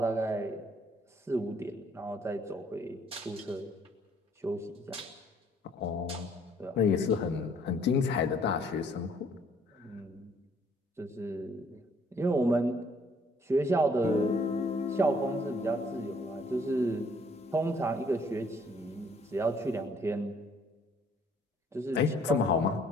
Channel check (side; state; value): both; normal; correlation 0.62